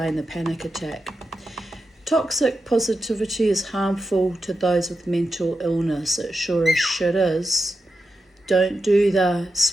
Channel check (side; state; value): both; normal; correlation 0.88